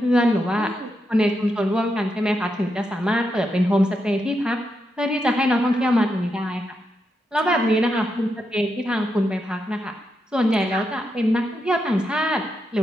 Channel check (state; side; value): normal; both; correlation 0.84